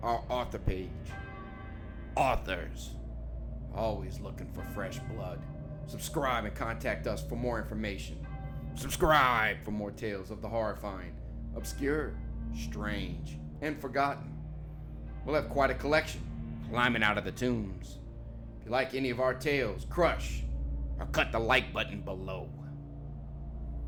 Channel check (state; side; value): identical; both; correlation 1.00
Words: our author page. Authors, always looking for fresh blood. Subscribe and contact us for more information. Subscribe for more tales of the horrifying, obscure, strange, and forgotten. We'll have quite a collection climbing out of the tombs. If you like any of our tales, crush or cut the like button below.